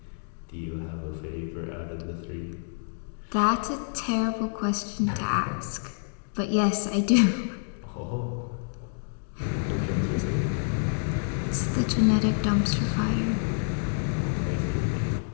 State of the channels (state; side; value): silent; right; digital silence